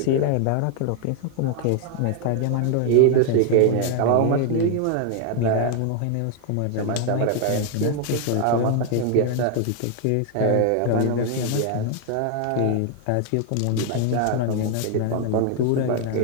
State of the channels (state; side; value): different; both; correlation 0.00